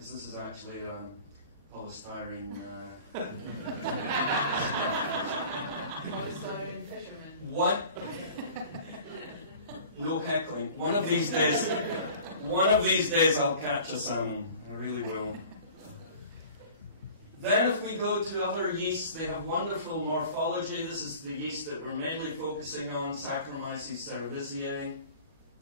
this is actually polystyrene. Polystyrene fisherman. What? No heckling. One of these days I'll catch a salmon. I really will. Then if we go to other yeasts, they have wonderful morphology. This is the yeast that we're mainly focusing on, Saccharomyces cerevisiae.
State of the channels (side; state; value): both; inverted; correlation -0.44